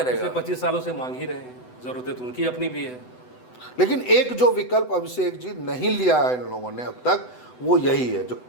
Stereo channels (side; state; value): right; late; 8.0 ms